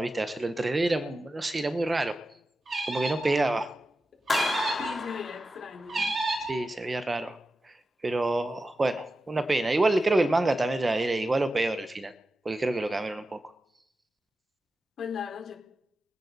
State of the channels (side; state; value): both; normal; correlation 0.92